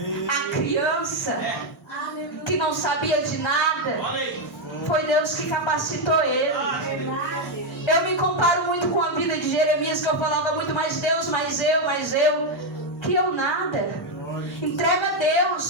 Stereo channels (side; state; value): both; normal; correlation 0.03